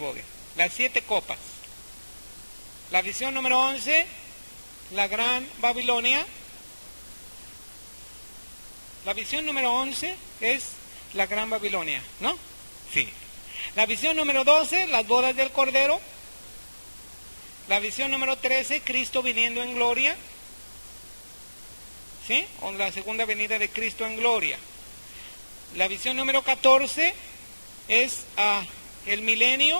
Las 7 copas. La visión número 11, la gran Babilonia. La visión número 11 es la gran Babilonia, ¿no? Sí. La visión número 12, las bodas del Cordero. La visión número 13, Cristo viniendo en gloria. ¿Sí? O la segunda venida de Cristo en gloria. La visión número 14 es el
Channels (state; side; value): inverted; both; correlation -1.00